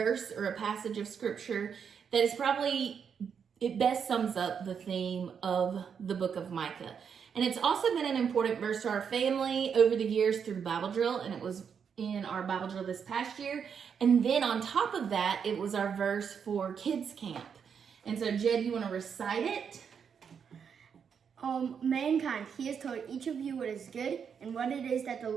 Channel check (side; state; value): left; quieter; 7.0 dB